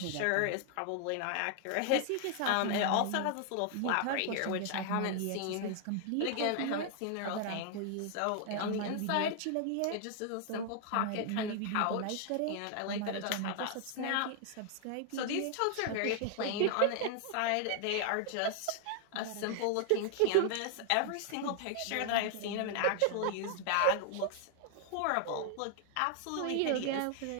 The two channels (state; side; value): different; both; correlation 0.00